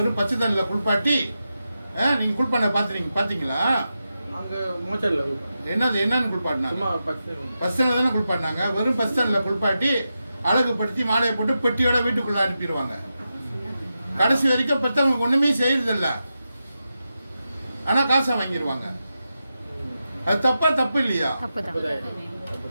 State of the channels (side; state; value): both; inverted; correlation -0.89